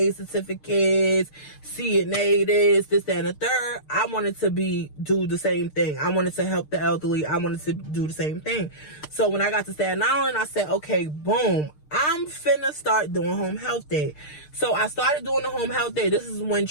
certificates, CNA this, that, and the third, I wanted to do the same thing. I wanted to help the elderly. I wanted to do the same thing. So when I got to Staten Island, I said, okay, boom, I'm finna start doing home health day. So I started doing the home health day. This is when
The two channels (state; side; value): late; right; 6.6 ms